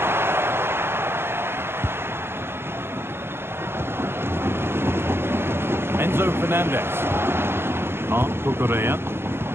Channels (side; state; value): left; late; 0.11 ms